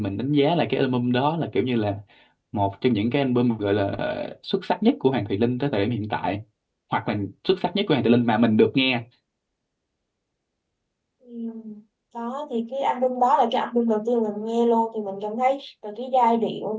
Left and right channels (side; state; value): both; identical; correlation 1.00